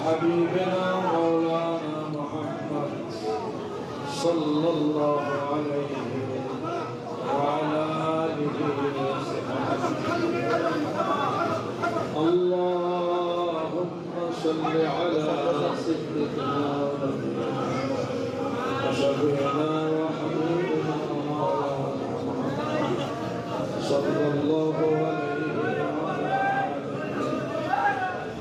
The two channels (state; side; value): identical; both; correlation 1.00